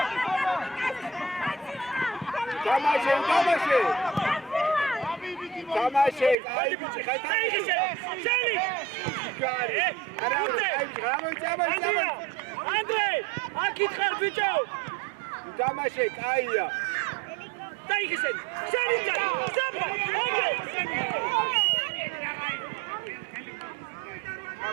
დამაშე, აი ბიჭი ხარ. შენი. ჯიგარი. არა, ანდრე, აქ ხარ ბიჭო. დამაშე, კაია. დაიხისენ. შენი ჯარი. ზაბა, ეგრე.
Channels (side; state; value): left; drops out; at 6.4 s